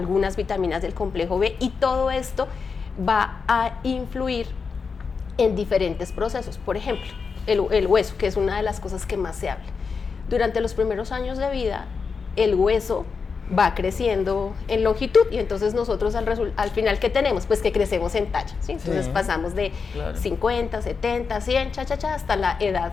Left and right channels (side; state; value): right; quieter; 5.3 dB